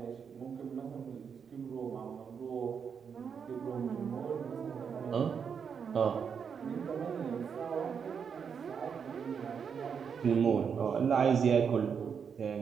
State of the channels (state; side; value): quieter; left; 6.8 dB